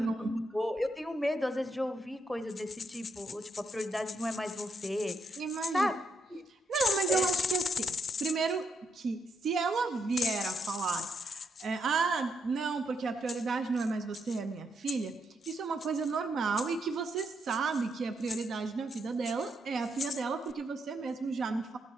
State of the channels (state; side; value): normal; both; correlation 0.79